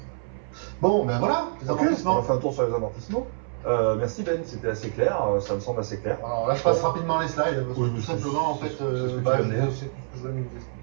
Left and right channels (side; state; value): left; silent; 61 dB below the other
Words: Bon, ben voilà, les Ok, amortissements. on a fait un tour sur les amortissements. Merci Ben, c'était assez clair, ça me semble assez clair. Alors là, je passe rapidement les slides, parce que Oui, tout c'est- simplement, en c'est- fait, c'est ce que tu c'est viens de dire. tout ce que je viens de vous expliquer.